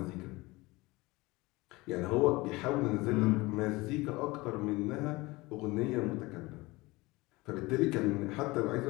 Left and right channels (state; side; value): quieter; right; 21.9 dB